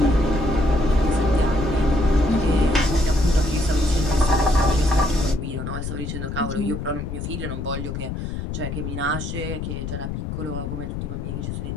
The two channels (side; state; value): left; noise; rumble, 5 dB below the sound